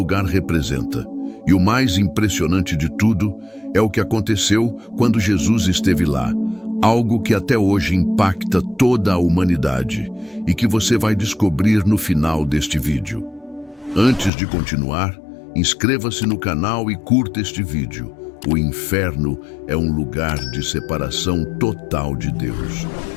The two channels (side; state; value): right; drops out; at 14.3 s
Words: representa. E o mais impressionante de tudo é o que aconteceu quando Jesus esteve lá. Algo que até hoje impacta toda a humanidade e que você vai descobrir no final deste vídeo. Antes de continuar, inscreva-se no canal e curta este vídeo. O inferno é um lugar de separação total de Deus,